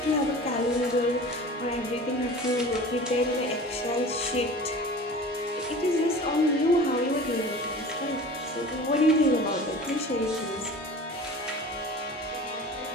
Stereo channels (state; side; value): normal; both; correlation 0.39